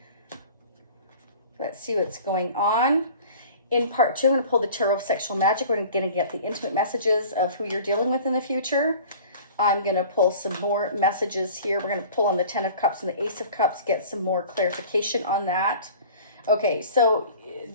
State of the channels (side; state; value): both; inverted; correlation -0.44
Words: Let's see what's going on. In part 2, I'm going to pull the Tarot of Sexual Magic. We're going to get the intimate messages of who you're dealing with in the future. I'm going to pull some more messages here. We're going to pull on the 10 of Cups and the Ace of Cups, get some more clarification on that. Okay, so